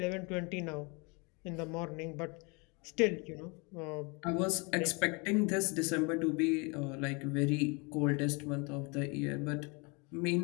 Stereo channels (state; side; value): quieter; right; 30.3 dB